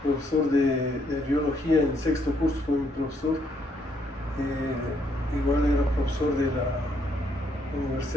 profesor de biología en sexto curso, fue mi profesor. Igual era profesor de la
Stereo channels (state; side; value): normal; both; correlation 0.71